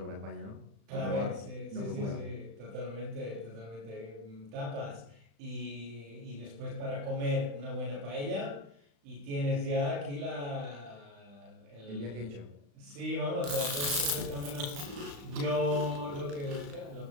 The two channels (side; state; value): left; late; 35 ms